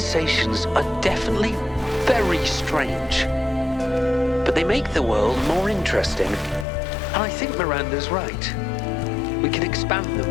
are definitely very strange. But they make the world more interesting. And I think Miranda's right. We can expand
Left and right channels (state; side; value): drops out; right; at 6.7 s